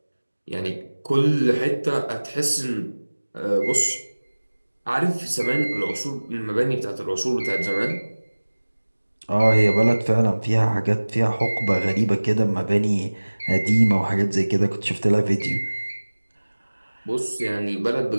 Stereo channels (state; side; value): inverted; both; correlation -1.00